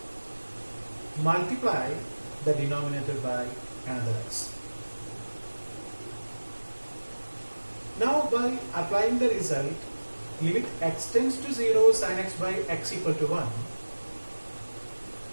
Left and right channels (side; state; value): both; inverted; correlation -1.00